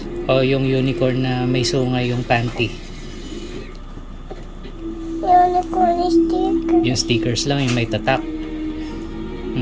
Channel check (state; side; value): identical; both; correlation 1.00